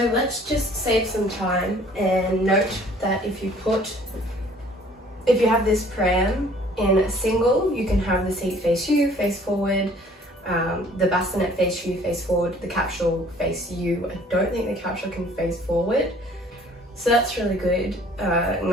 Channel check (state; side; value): normal; both; correlation 0.55